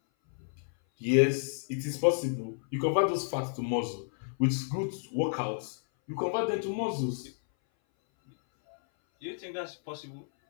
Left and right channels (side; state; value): right; silent; 57 dB below the other